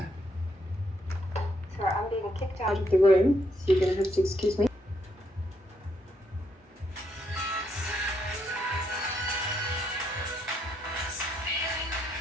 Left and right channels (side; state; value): both; normal; correlation 0.76